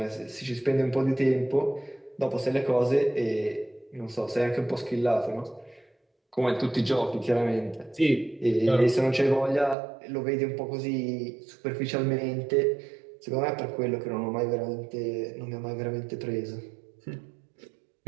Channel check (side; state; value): left; drops out; at 9.8 s